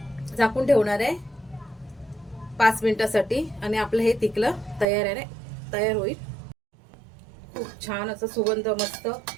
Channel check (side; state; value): left; drops out; at 4.9 s